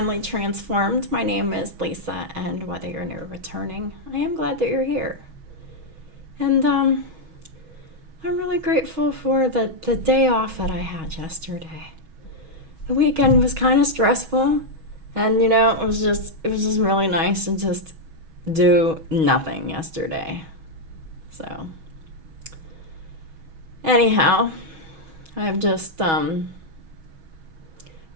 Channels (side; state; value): left; late; 6.2 ms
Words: Transformed. My name is Lisa, and whether you're new or returning, I am glad that you're here. And I'm really grateful for the day off that I had yesterday. The weekend was kind of stressful, and it was just really nice to just do nothing yesterday. So anyhow, I've just